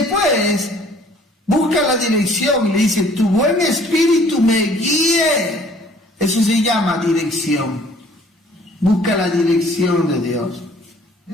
busca la dirección y le dice, tu buen espíritu me guíe. Eso se llama dirección. Busca la dirección de Dios.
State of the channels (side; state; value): both; normal; correlation 0.56